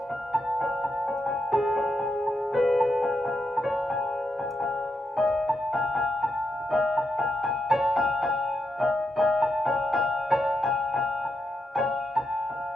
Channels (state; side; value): normal; both; correlation 0.84